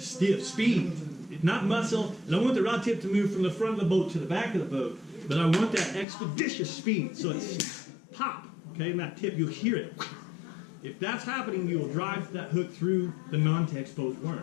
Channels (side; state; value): right; drops out; at 6.1 s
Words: speed, not muscle. I don't want the rod tip to move from the front of the boat to the back of the boat, but I want that expeditious speed. So it's pop, okay, and that tip, you'll hear it. If that's happening, you will drive that hook through the non-text posed